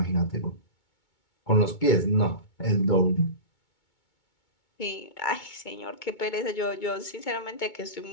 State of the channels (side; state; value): right; late; 2.2 ms